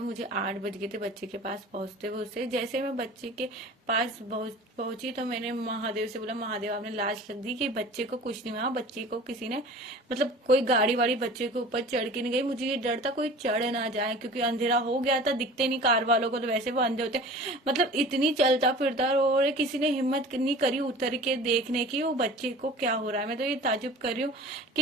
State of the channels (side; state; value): both; normal; correlation 0.41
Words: मुझे 8 बज गए थे बच्चे के पास पहुंचते हुए। उससे जैसे मैं बच्चे के पास पहुंची तो मैंने महादेव से बोला, महादेव आपने लाज रख दी कि बच्चे को कुछ नहीं हुआ, बच्चे को किसी ने मतलब कोई गाड़ी वाड़ी बच्चे के ऊपर चढ़ के नहीं गई। मुझे ये डर था कोई चढ़ ना जाए क्योंकि अंधेरा हो गया था, दिखते नहीं कार वालों को, तो वैसे वो अंधे होते, मतलब इतनी चलता फिरता और किसी ने हिम्मत नहीं करी उतर के देखने की वो बच्चे को क्या हो रहा है। मैं तो ये ताजुब कर रही हूँ